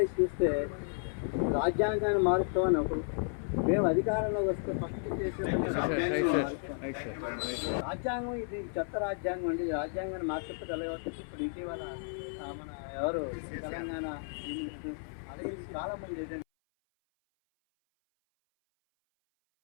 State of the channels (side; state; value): right; silent; 56 dB below the other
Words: చూస్తే రాజ్యాంగాన్ని మారుస్తామని ఒకరు, మేము అధికారంలో వస్తే ఫస్ట్ చేసే రాజ్యాంగం ఇది చెత్త రాజ్యాంగం అండి. రాజ్యాంగాన్ని మార్చకపోతే ఎలా వస్తుంది? ఇప్పుడు ఇటీవల మన ఎవరు తెలంగాణ అలాగే చాలా మంది ఏదంటే